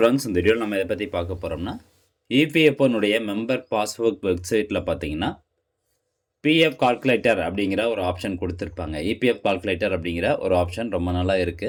இந்த வீடியோவில் நம்ம எதை பற்றி பார்க்க போகிறோம்னா, இபிஎஃப்ஓனுடைய மெம்பர் பாஸ்புக் வெப்சைட்டில் பார்த்தீங்கன்னா, பிஎஃப் கால்குலேட்டர் அப்படிங்கிற ஒரு ஆப்ஷன் கொடுத்துருப்பாங்க. இபிஎஃப் கால்குலேட்டர் அப்படிங்கிற ஒரு ஆப்ஷன் ரொம்ப நாளாக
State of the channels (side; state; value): both; identical; correlation 1.00